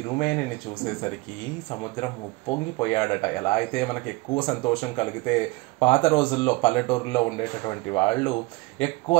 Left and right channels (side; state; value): left; quieter; 22.5 dB